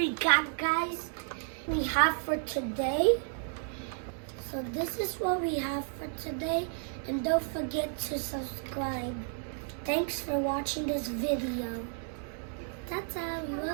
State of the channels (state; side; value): silent; left; 56 dB below the other